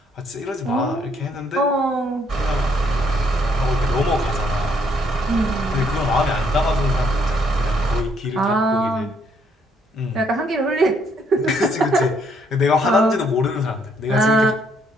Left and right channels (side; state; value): both; normal; correlation 0.69